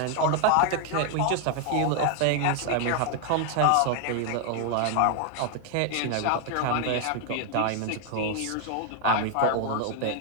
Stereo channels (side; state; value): both; different; correlation 0.00